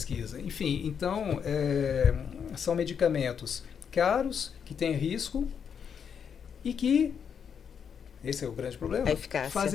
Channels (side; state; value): right; quieter; 7.3 dB